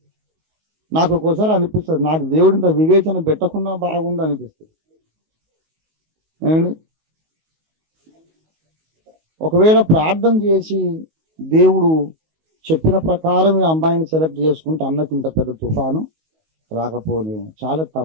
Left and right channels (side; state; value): left; late; 19 ms